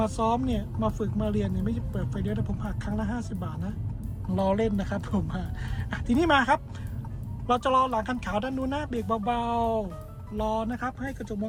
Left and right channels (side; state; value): both; identical; correlation 1.00